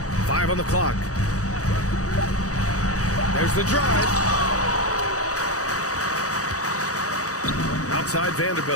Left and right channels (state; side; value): late; right; 0.66 ms